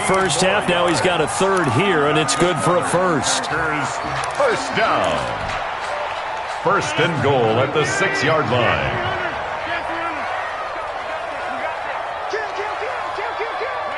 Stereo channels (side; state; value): both; identical; correlation 1.00